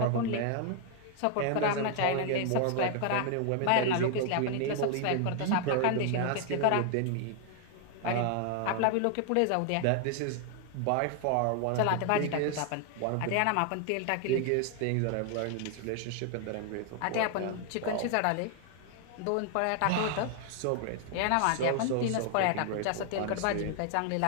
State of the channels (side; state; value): both; different; correlation 0.00